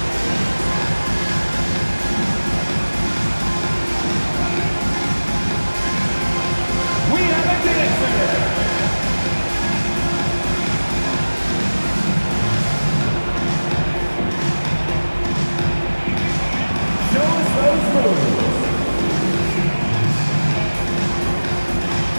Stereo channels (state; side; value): inverted; both; correlation -1.00